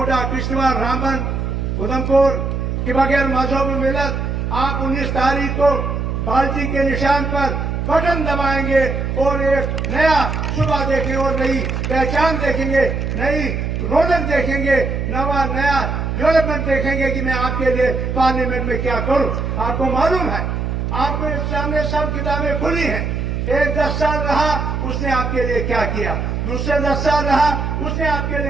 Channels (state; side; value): noise; right; hum, 2 dB below the sound